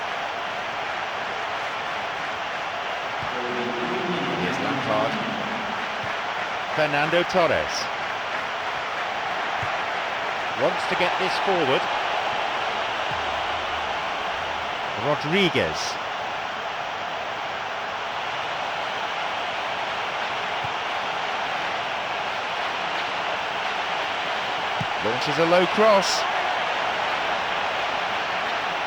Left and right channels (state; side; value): identical; both; correlation 1.00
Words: Here's Lampard. Fernando Torres. Wants to get this forward. Rodriguez. Launches a low cross.